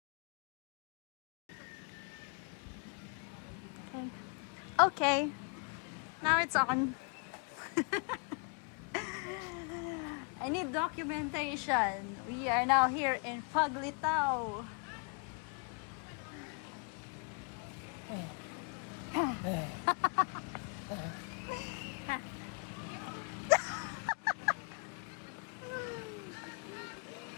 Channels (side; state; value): right; quieter; 35.9 dB